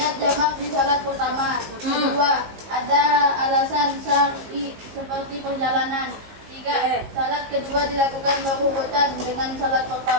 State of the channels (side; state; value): left; late; 18 ms